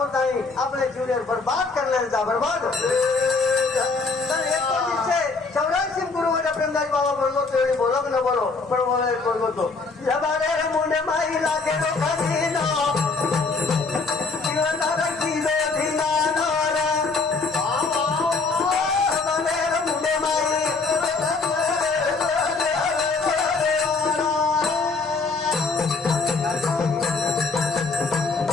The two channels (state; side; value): quieter; right; 4.1 dB